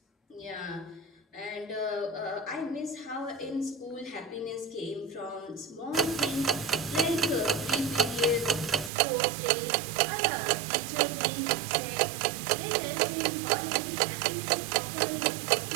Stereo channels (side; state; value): left; drops out; at 8.9 s